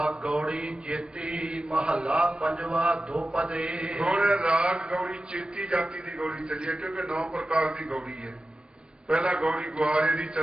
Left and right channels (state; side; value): late; left; 0.053 ms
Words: ਗੌੜੀ ਚੇਤੀ ਮਹੱਲਾ ਪੰਜਵਾ ਦੋਪਦੇ। ਹੁਣ ਰਾਗ ਗੌੜੀ ਚੇਤੀ ਜਾਤੀ ਦੀ ਗੌੜੀ ਚੱਲੀ ਹੈ, ਕਿਉਂਕਿ 9 ਪ੍ਰਕਾਰ ਦੀ ਗੌੜੀ ਹੈ। ਪਹਿਲਾਂ ਗੌੜੀ ਗੁਆਰੇ ਦੀ